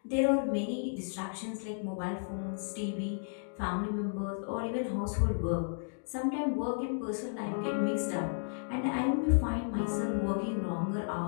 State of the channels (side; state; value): right; silent; digital silence